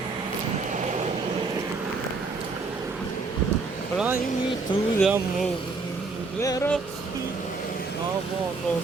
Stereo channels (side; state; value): left; quieter; 4.1 dB